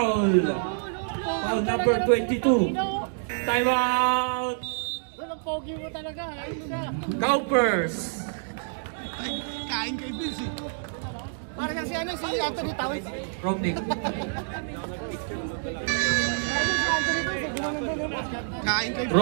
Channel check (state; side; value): silent; left; digital silence